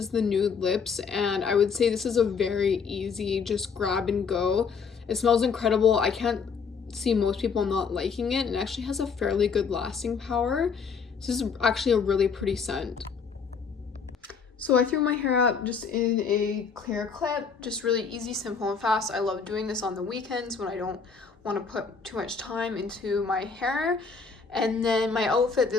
the nude lips, and I would say this is a very easy just grab and go. It smells incredible. I can't see most people not liking it, and it actually has a fairly good lasting power. This is actually a really pretty scent. So I threw my hair up just in a clear clip, just really easy, simple, and fast. I love doing this on the weekends when I don't want to put too much time into my hair. And then my outfit,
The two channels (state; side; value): quieter; right; 5.7 dB